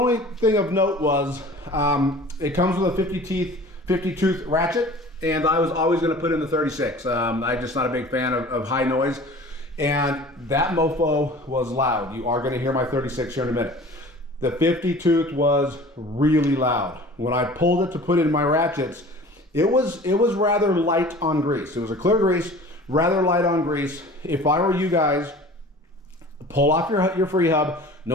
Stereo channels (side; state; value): both; normal; correlation 0.43